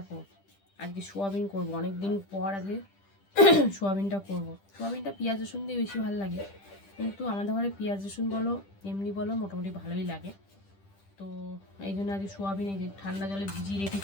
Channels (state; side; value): late; right; 10 ms